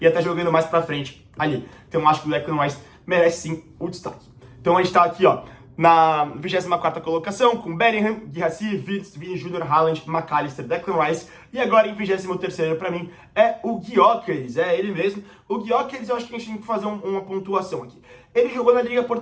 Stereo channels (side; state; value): both; identical; correlation 1.00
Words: até jogando mais pra frente ali. Então acho que o Declan Rice merece sim o destaque. Então a gente tá aqui, ó, na 24ª colocação, com Bellingham, Guirassy, Wirtz, Vini Jr., Haaland, McAllister, Declan Rice. E agora em 23º pra mim é o Gyökeres, é ele mesmo. O Gyökeres, eu acho que a gente tem que fazer uma pontuação aqui. Ele jogou na Liga